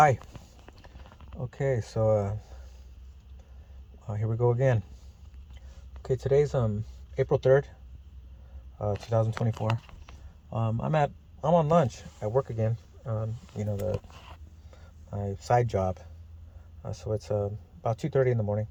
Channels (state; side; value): identical; both; correlation 1.00